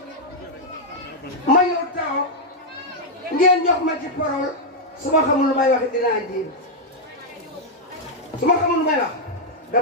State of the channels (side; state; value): both; normal; correlation -0.03